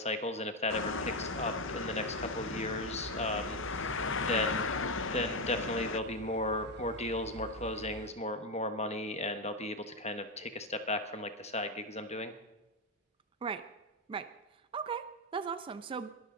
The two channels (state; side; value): normal; both; correlation 0.08